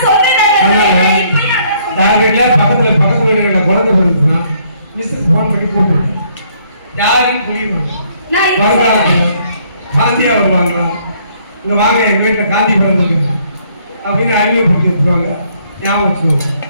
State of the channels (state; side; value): inverted; both; correlation -0.66